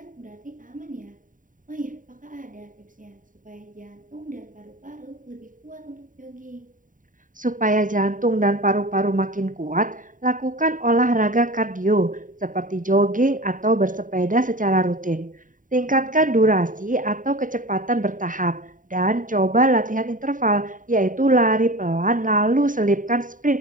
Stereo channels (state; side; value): late; left; 0.39 ms